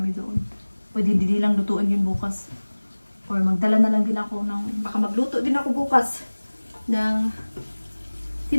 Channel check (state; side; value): inverted; both; correlation -1.00